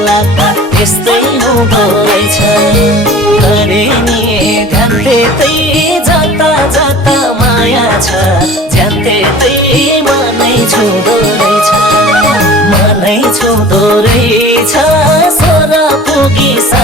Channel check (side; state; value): both; normal; correlation 0.43